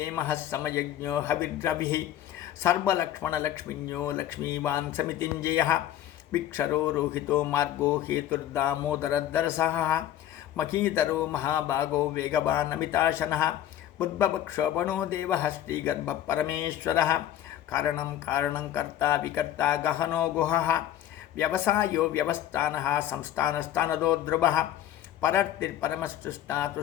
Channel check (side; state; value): right; quieter; 11.9 dB